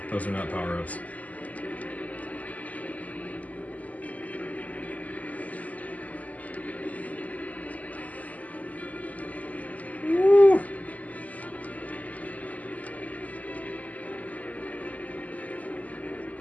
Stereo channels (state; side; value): late; right; 0.075 ms